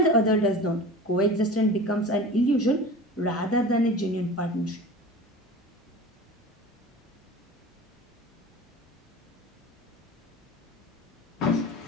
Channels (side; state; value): both; normal; correlation 0.36